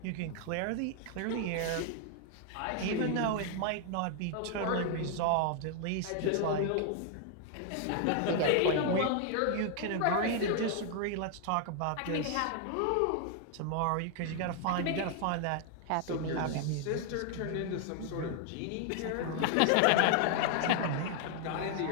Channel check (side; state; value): both; different; correlation 0.00